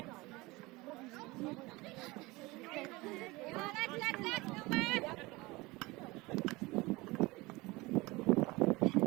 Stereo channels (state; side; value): quieter; left; 22.3 dB